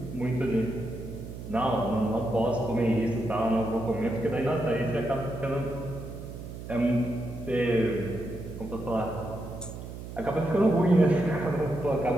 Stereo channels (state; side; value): noise; right; hum, 10 dB below the sound